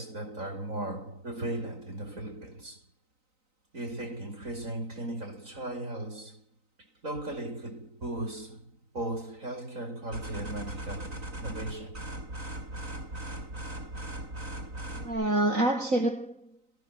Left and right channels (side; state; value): left; late; 3.9 ms